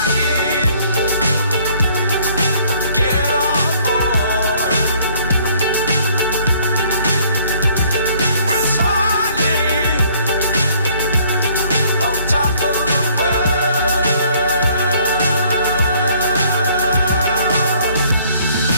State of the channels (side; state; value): both; inverted; correlation -0.60